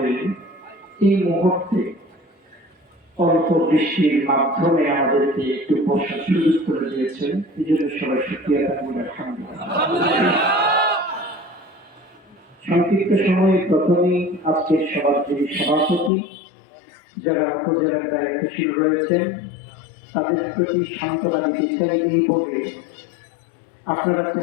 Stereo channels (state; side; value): drops out; right; at 16.1 s